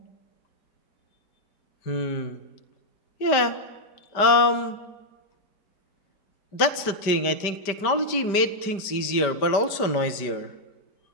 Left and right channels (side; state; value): right; late; 5.0 ms